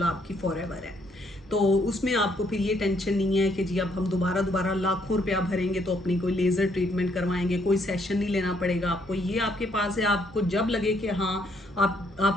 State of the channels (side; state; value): both; normal; correlation 0.70